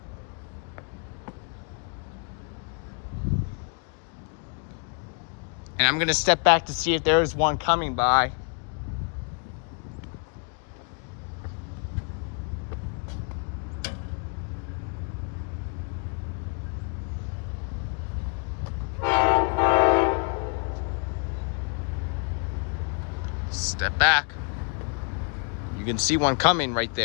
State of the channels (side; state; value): right; quieter; 39.5 dB